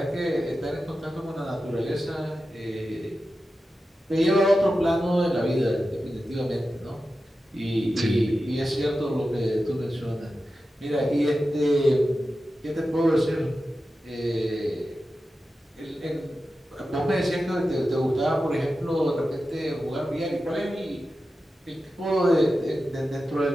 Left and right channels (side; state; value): both; normal; correlation 0.92